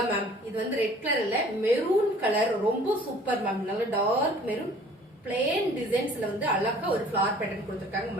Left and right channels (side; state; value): both; normal; correlation 0.52